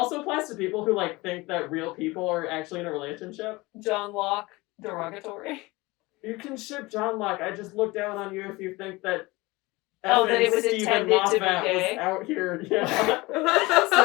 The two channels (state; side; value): quieter; right; 22.2 dB